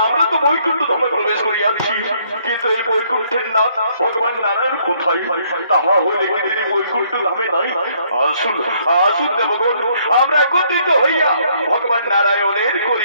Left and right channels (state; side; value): inverted; both; correlation -0.67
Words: আমরা তো বৈকুণ্ঠ ধামে প্রবেশ করিয়াছি, কিন্তু এই বৈকুণ্ঠের নাথ ভগবান নারায়ণ কোথায়? তাহা হইলে কি তিনি বৈকুণ্ঠ ধামে নাই? আসুন আসুন দেবগণ, আমরা একত্রিত হইয়া ভগবান নারায়ণের